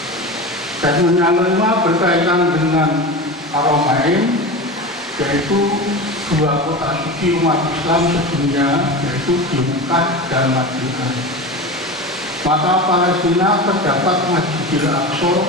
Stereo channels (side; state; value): both; normal; correlation 0.27